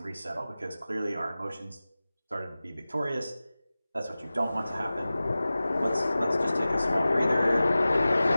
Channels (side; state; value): both; inverted; correlation -0.96